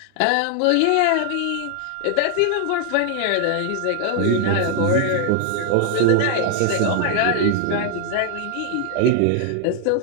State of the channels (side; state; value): both; different; correlation 0.00